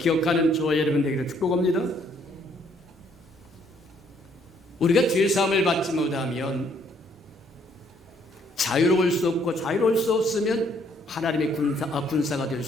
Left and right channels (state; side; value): normal; both; correlation 0.66